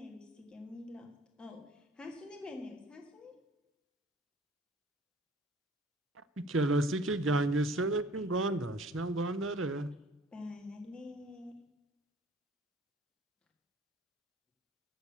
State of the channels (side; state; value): both; normal; correlation 0.51